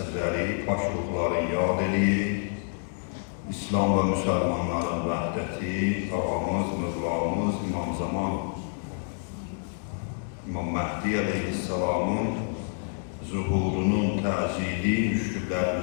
paş ruhları yad eləyik. İslam və müsəlmanların vəhdəti, ağamız, mövlamız, İmam Zaman, İmam Məhdi Aleyhisselamın zuhurunun təzili,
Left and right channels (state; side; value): silent; right; 59 dB below the other